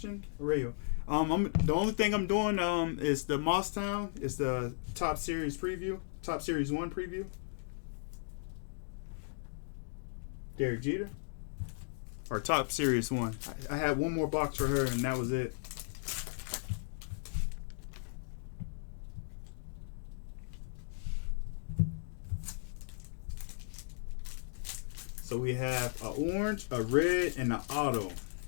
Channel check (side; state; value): right; silent; digital silence